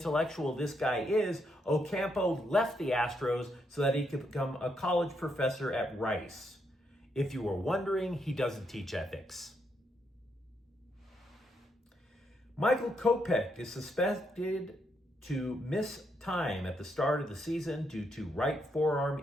this guy is, Ocampo left the Astros so that he could become a college professor at Rice. If you were wondering, he doesn't teach ethics. Michael Kopech is suspected to miss time at the start of the season due to right forearm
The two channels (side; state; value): both; normal; correlation 0.78